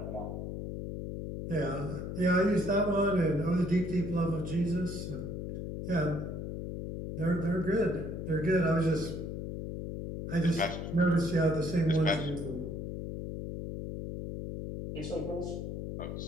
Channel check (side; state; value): left; noise; hum, 5 dB below the sound